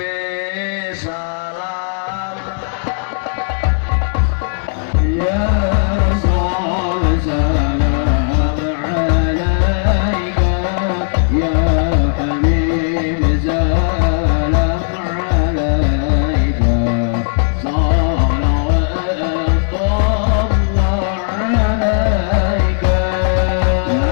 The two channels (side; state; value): right; silent; digital silence